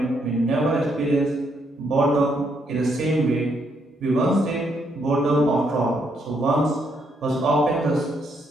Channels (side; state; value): both; normal; correlation 0.75